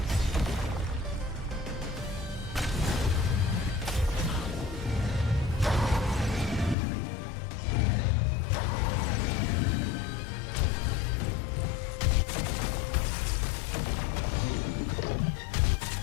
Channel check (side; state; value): right; drops out; at 6.8 s